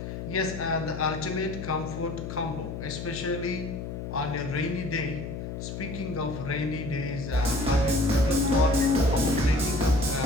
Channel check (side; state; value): left; noise; hum, 7 dB below the sound